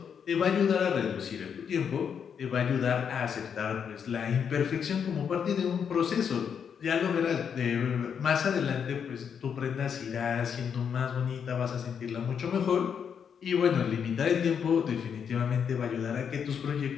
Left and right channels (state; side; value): quieter; right; 7.3 dB